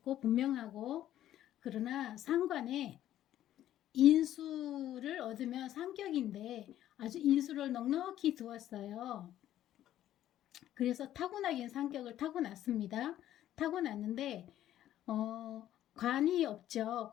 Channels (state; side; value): quieter; right; 12.4 dB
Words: 분명하고. 그러나 상관에 인수를 얻으면 상격인데 아주 인수를 넉넉히 두었어요. 그래서 타고나긴 상격을 타고났습니다. 타고났는데 관이 없죠.